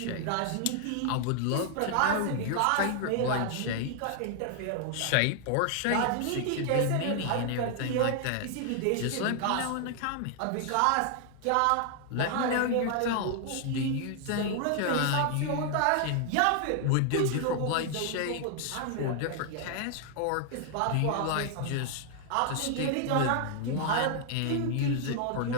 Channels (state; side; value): different; both; correlation 0.00